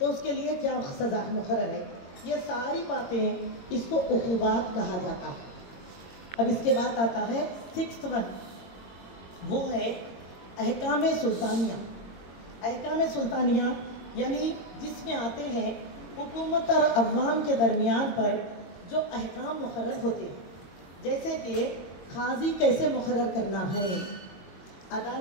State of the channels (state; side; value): late; right; 22 ms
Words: اس کے لیے کیا سزا مقرر ہے. یہ ساری باتیں اس کو عقوبات کہا جاتا ہے. اب اس کے بعد آتا ہے 6th ون، وہ ہے احکام سلطانیہ. احکام سلطانیہ یعنی جس میں آتے ہیں حکومت اور عوام کے درمیان پر جو احکام مقرر ہوتے ہیں. جیسے کہ قاضی کیسے مقرر کرنا ہے،